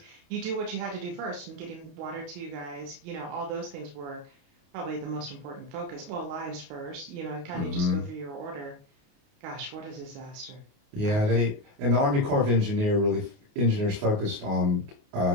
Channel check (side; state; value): left; late; 28 ms